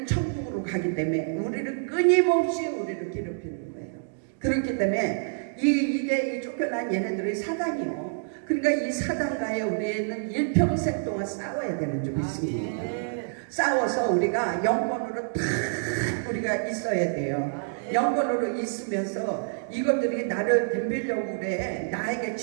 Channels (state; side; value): silent; left; digital silence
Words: 천국으로 가기 때문에 우리를 끊임없이 우리를 괴롭히는 거예요. 그렇기 때문에 이게 이 쫓겨난 얘네들이 사단이요. 그러니까 이 사단과의 우리는 일평생 동안 싸워야 되는 줄 믿습니다. 싸워서 우리가 영권으로 탁 우리가 있어야 돼요. 영권으로 있으면서 이것들이 나를 덤비려고 그래, 나에게